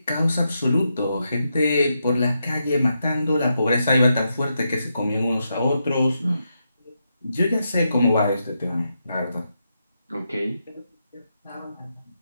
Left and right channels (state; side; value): inverted; both; correlation -0.84